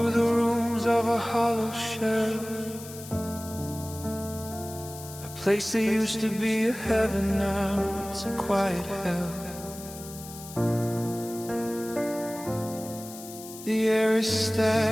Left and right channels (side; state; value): left; noise; hiss, 14 dB below the sound